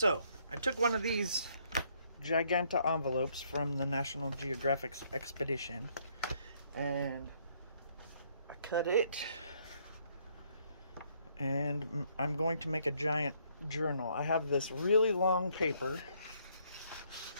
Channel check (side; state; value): both; inverted; correlation -0.68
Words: I took one of these Giganta envelopes from the National Geographic expedition and I cut it. And I'm going to make a giant journal. I have this really long paper,